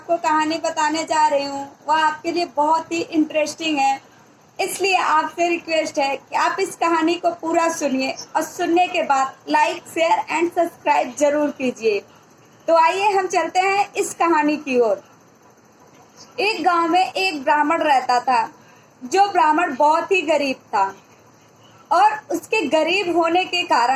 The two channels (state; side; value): identical; both; correlation 1.00